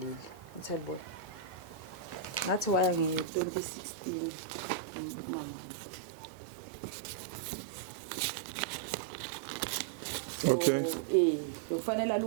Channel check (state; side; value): drops out; left; at 3.2 s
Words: ngithelibona ngathi waya nge-2016 umama okay kufanele